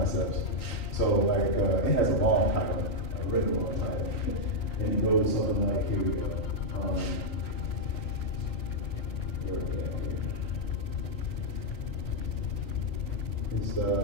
So like it has a long title, a really long title, and it goes something like here we go. Where is that here? It's so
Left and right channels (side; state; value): right; late; 4.1 ms